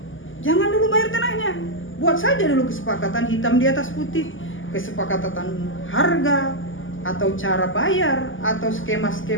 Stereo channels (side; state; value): right; late; 0.58 ms